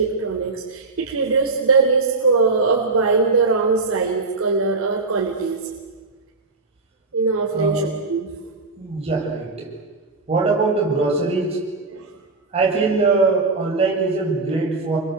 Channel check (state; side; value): quieter; left; 3.7 dB